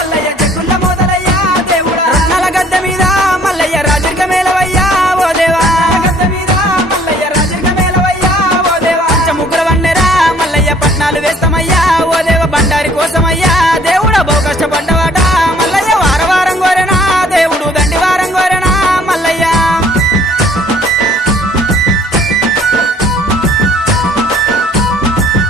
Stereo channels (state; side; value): normal; both; correlation 0.58